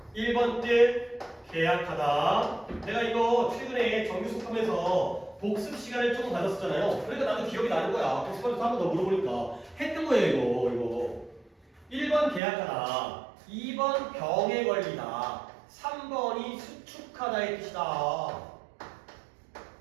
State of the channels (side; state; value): left; drops out; at 12.4 s